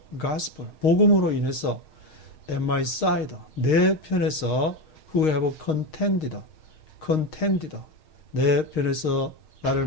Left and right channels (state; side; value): late; right; 6.5 ms